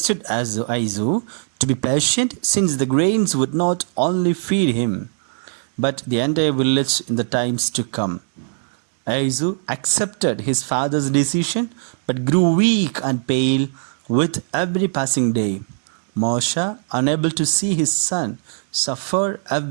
Aizu to be patient, since the grains would not only feed him, but the entire village in the times to come. Aizu accepted his father's decision, but grew weak and pale with every passing day. Mausha, unable to see his son suffer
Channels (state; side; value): silent; left; digital silence